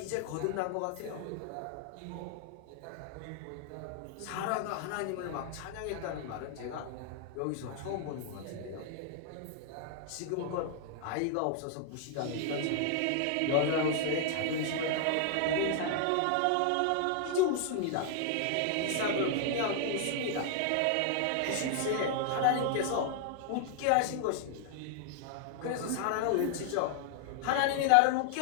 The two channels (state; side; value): different; both; correlation 0.00